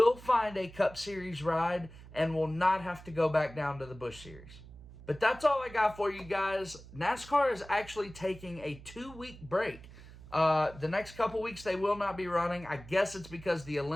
find a Cup Series ride and will not have to go back down to the Busch Series. But that's all I got for you guys. NASCAR is actually taking a 2-week break. The next couple weeks they will not be running. I guess it's because the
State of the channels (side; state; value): right; noise; hum, 18 dB below the sound